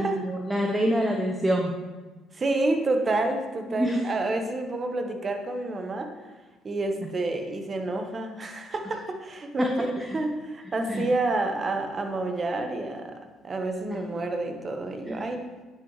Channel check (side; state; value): both; normal; correlation 0.84